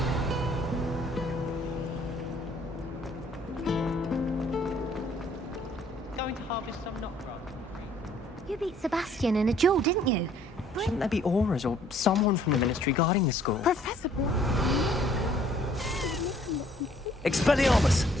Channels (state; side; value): normal; both; correlation 0.60